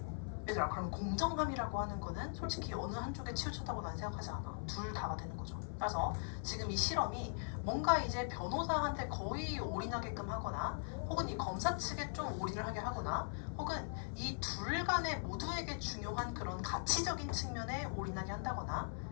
얘들아, 그럼 공정함이라고 하는 거는 솔직히 어느 한쪽에 치우쳤다고 난 생각하지 않아. 둘 다가 되는 거죠. 따라서 지금 이 실험이 뭔가 이제 변호사한테 거의 올인하게끔 하거나 혹은 이 검사 측에 좀 올인을 하게 하거나 혹은 이 둘 간에 모두에게 중요한 그런 가치적인 측면에 올인하게 한다거나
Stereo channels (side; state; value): right; silent; 51 dB below the other